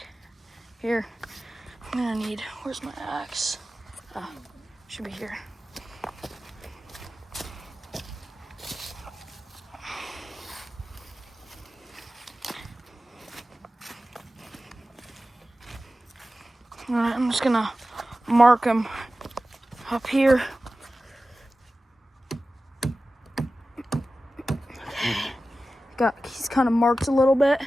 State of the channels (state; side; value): normal; both; correlation 0.95